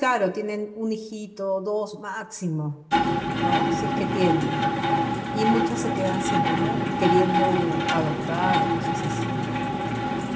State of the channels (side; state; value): both; identical; correlation 1.00